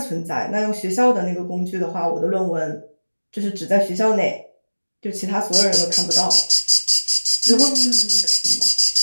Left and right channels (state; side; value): inverted; both; correlation -1.00